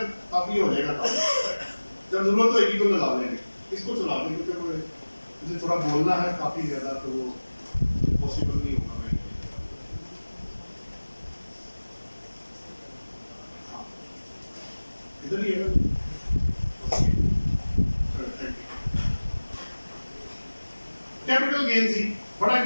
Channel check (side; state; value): both; inverted; correlation -1.00